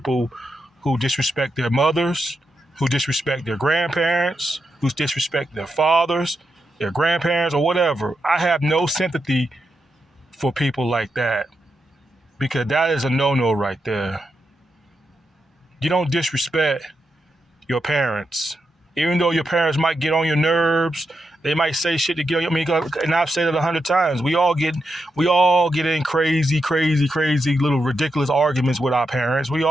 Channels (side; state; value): both; normal; correlation 0.85